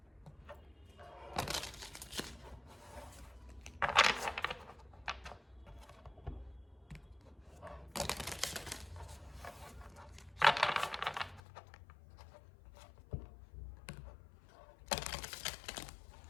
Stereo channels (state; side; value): drops out; right; at 11.4 s